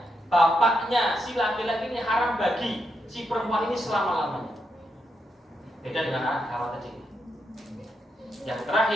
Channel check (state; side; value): normal; both; correlation 0.82